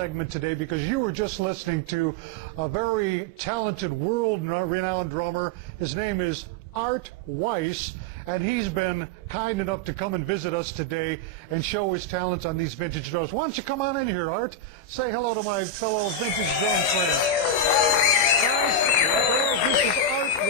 today because you were just listening to a very talented, world-renowned drummer. His name is Art WEISS, and he's been kind enough to come and visit us today and show his talents on these vintage drums. Why don't you come on in here, Art? Say hello to my fellow vintage drum friends. Guys, this is Art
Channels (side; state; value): right; late; 26 ms